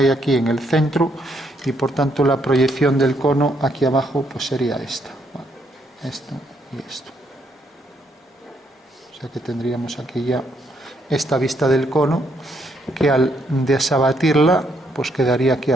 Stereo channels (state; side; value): normal; both; correlation 0.73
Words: aquí en el centro y por tanto la proyección del cono aquí abajo pues sería esta, ¿vale? Esto y esto. O sea que tendríamos aquí ya esta vista del cono que al desabatirla pues quedaría aquí